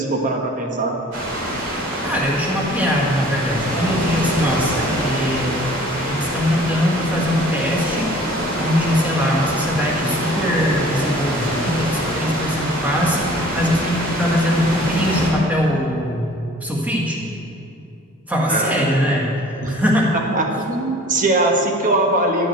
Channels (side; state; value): both; normal; correlation 0.48